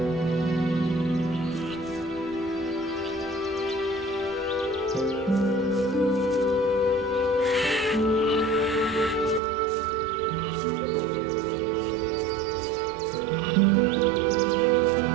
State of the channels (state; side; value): drops out; left; at 9.4 s